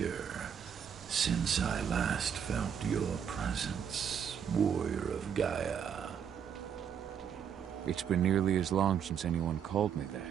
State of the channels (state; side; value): quieter; left; 8.0 dB